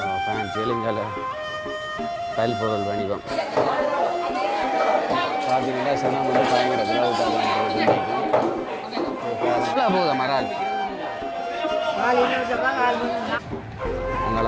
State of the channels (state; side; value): identical; both; correlation 1.00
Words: ஃபேன்சி இலங்கால பயில் பொருள் வணிகம் பார்த்தீங்கன்னா சனம் வந்து பயங்கர போதும் மரால்